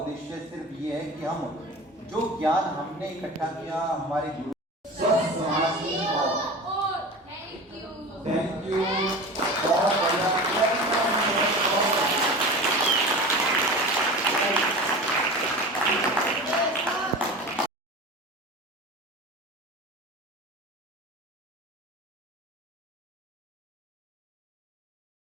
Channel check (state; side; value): normal; both; correlation 0.33